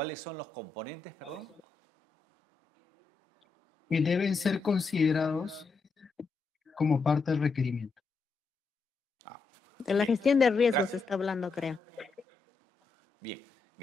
son los componentes, perdón? Que deben ser considerados como parte del requerimiento. De la gestión de riesgos se está hablando, creo. Bien,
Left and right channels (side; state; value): right; quieter; 4.5 dB